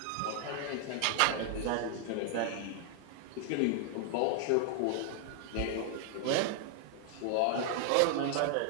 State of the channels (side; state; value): both; different; correlation 0.00